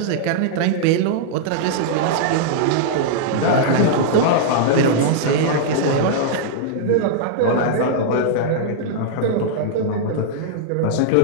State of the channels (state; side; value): different; both; correlation -0.02